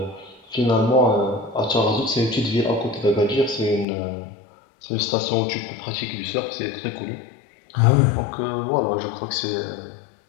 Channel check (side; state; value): right; drops out; at 3.9 s